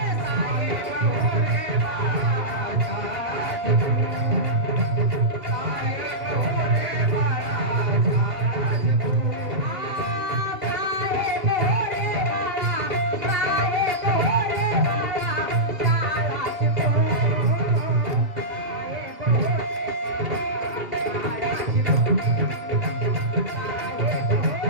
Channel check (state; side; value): late; left; 2.8 ms